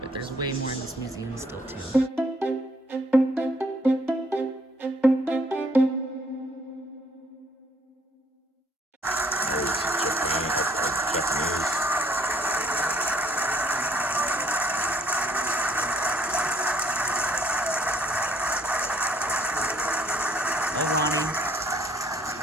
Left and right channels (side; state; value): both; normal; correlation 0.63